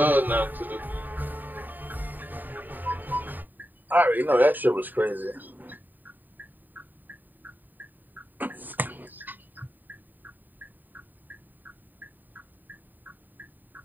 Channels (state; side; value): late; left; 0.089 ms